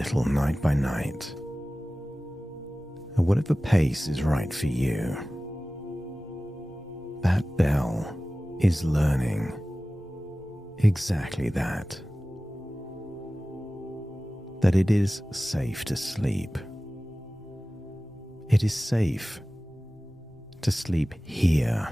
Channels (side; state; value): left; noise; rumble, 27 dB below the sound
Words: night by night, at whatever pace is right for you, that bell is learning exactly that. That it is safe to sleep. It is safe to sleep